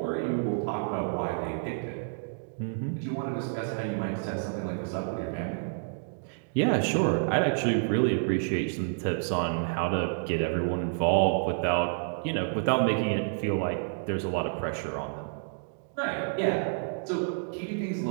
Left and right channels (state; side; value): silent; left; digital silence